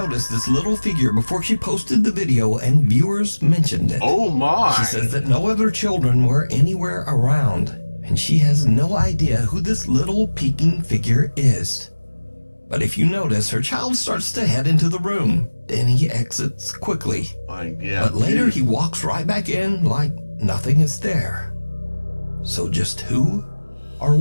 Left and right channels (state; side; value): inverted; both; correlation -1.00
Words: this little figure before she posted the video and viewers mentioned it. Oh my! She says that no other children were anywhere around, and she has no idea who this little peeking figure is. But if you notice, her child starts to head into the room, then he exits quickly. But later he walks right back in like nothing is there. So just who or